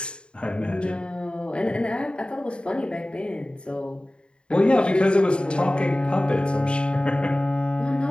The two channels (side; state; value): right; late; 0.053 ms